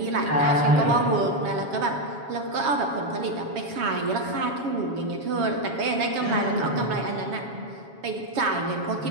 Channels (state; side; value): late; left; 7.2 ms